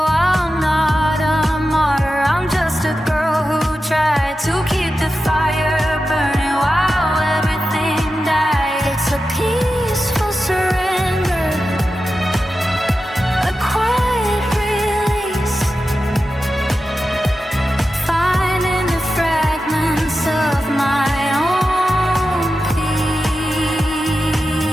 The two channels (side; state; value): both; normal; correlation 0.92